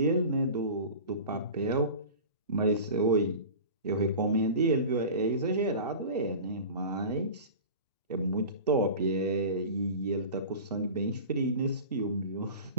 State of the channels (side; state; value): both; inverted; correlation -0.35